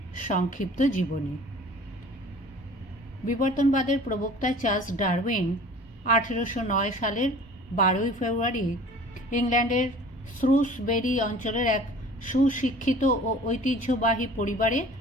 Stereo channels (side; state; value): both; normal; correlation 0.46